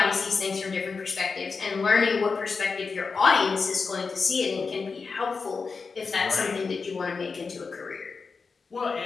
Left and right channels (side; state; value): right; quieter; 4.8 dB